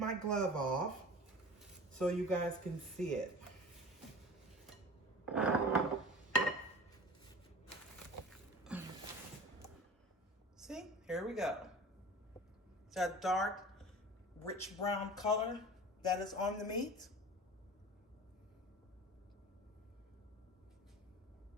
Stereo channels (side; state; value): both; normal; correlation 0.38